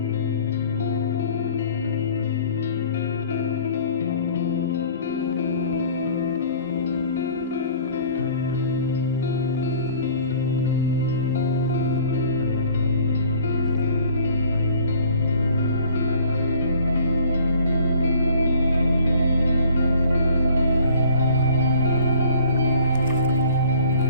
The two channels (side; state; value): both; inverted; correlation -0.51